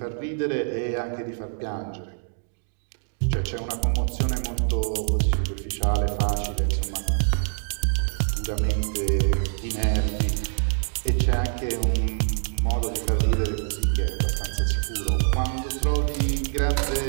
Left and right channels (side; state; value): left; silent; digital silence